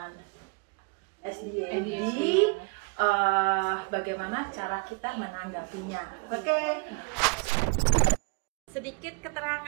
ADHD. Bagaimana cara kita menanggapinya. Oke. Sedikit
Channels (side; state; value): left; quieter; 32.1 dB